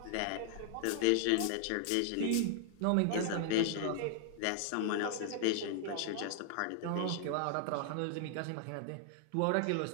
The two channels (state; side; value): different; both; correlation 0.00